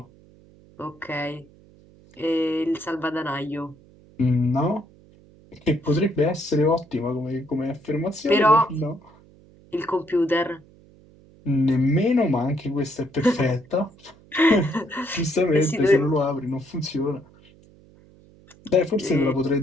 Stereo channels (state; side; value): noise; right; hum, 26 dB below the sound